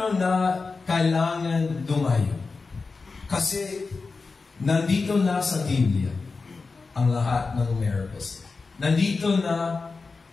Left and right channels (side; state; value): right; quieter; 4.2 dB